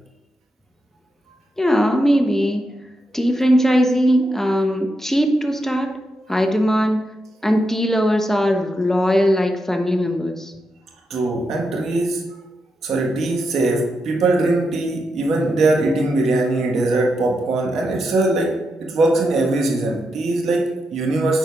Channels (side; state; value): both; normal; correlation 0.85